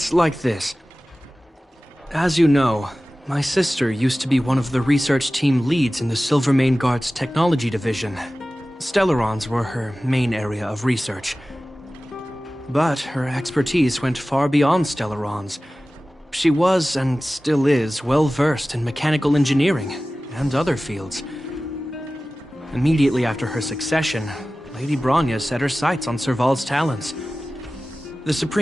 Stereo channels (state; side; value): normal; both; correlation 0.96